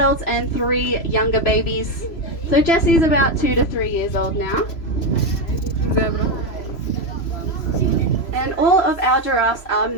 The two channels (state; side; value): late; right; 3.0 ms